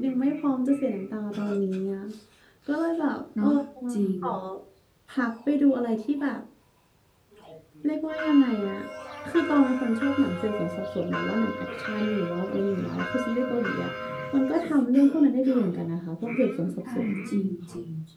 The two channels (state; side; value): identical; both; correlation 1.00